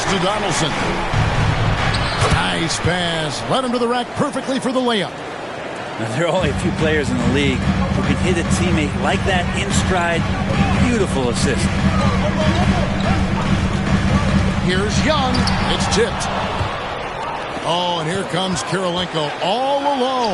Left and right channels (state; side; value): identical; both; correlation 1.00